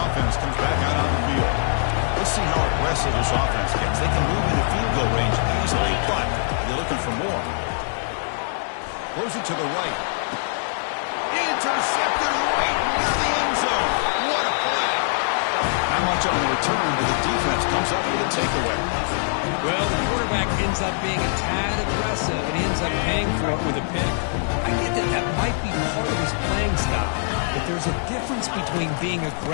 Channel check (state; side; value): silent; right; 61 dB below the other